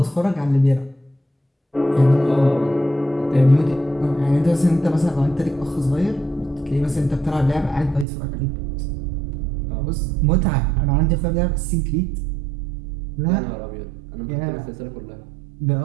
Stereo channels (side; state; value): left; drops out; at 8.1 s